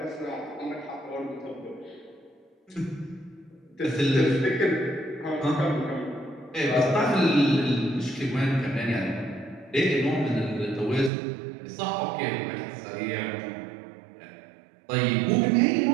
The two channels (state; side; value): drops out; left; at 11.1 s